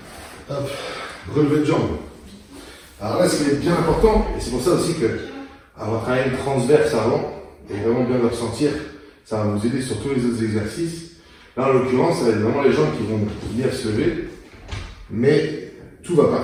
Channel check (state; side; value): identical; both; correlation 1.00